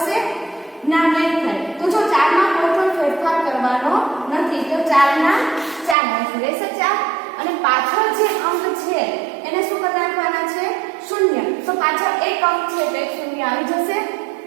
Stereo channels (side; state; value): left; drops out; at 6.0 s